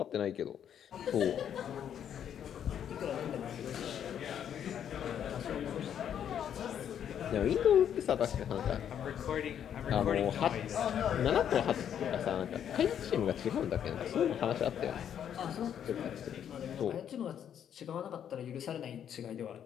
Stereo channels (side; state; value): right; quieter; 9.2 dB